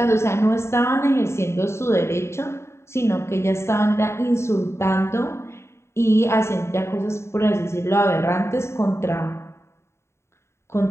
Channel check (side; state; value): right; late; 0.13 ms